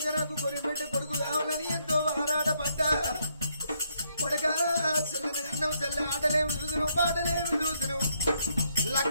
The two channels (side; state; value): both; inverted; correlation -0.74